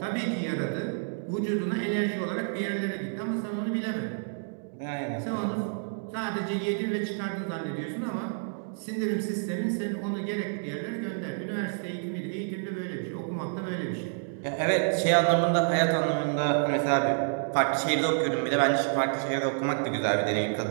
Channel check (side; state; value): left; silent; digital silence